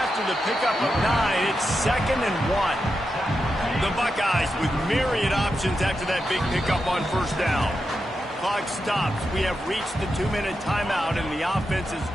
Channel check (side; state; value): both; normal; correlation 0.88